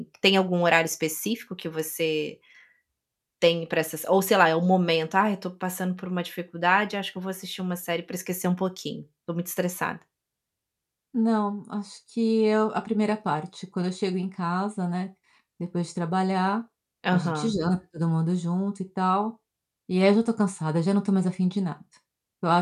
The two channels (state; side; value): identical; both; correlation 1.00